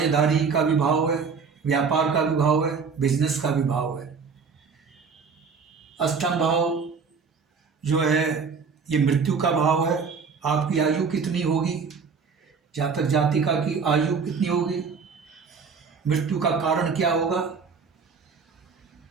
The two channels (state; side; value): quieter; left; 5.4 dB